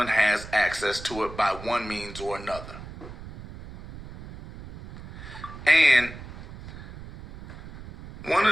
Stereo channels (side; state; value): right; noise; rumble, 14 dB below the sound